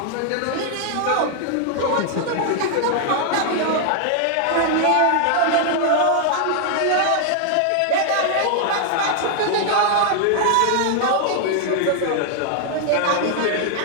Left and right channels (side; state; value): both; different; correlation 0.00